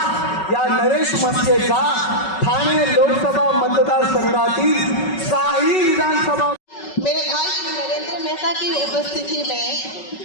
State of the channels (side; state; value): right; late; 5.3 ms